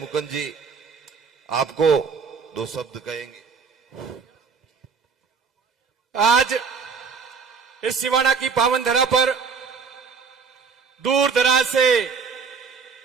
जी आपको 2 शब्द कहेंगे। आज इस सिवाना की पावन धरा पर दूर दराज से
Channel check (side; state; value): left; quieter; 5.5 dB